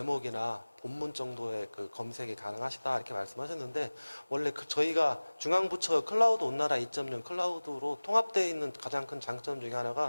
본문 정도의 검색이 가능하시다 이렇게 말씀하셨는데 원래 저희가 중앙부처 클라우드 온나라 2.0 클라우드로 통합되어 있는 가장 큰 장점 중에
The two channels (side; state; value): both; inverted; correlation -1.00